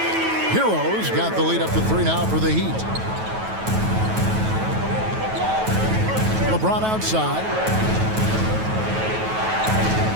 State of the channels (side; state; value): left; late; 9.2 ms